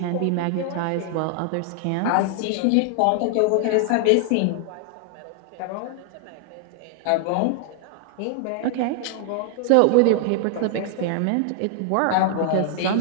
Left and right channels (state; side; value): different; both; correlation 0.00